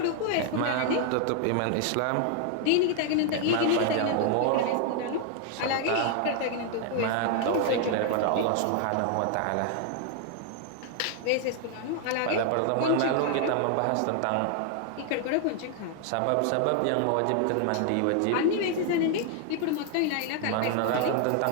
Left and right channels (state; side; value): different; both; correlation 0.00